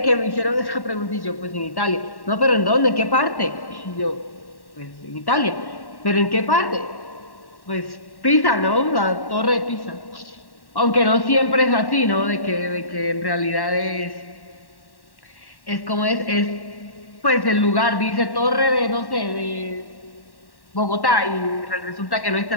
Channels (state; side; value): late; right; 1.1 ms